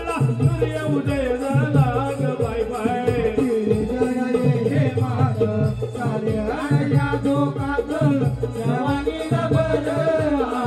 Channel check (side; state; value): both; identical; correlation 1.00